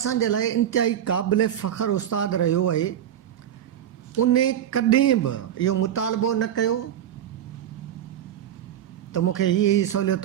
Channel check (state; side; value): quieter; left; 10.4 dB